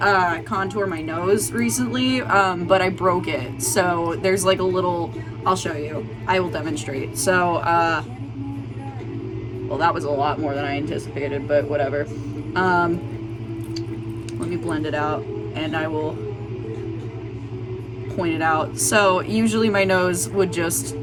contour my nose recently, but I broke it. So there's like a little, I'll show you. I will demonstrate. So, well, that was a lot more than I anticipated, but whatever. Let me blend it out and I will point it out. So usually my nose would just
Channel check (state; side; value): identical; both; correlation 1.00